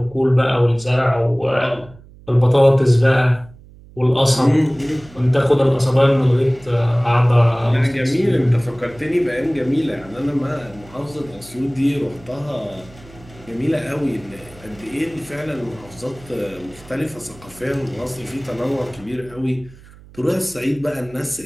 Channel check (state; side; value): noise; right; hum, 22 dB below the sound